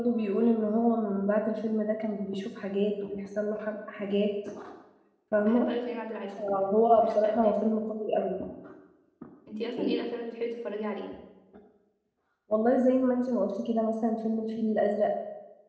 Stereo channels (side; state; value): both; identical; correlation 1.00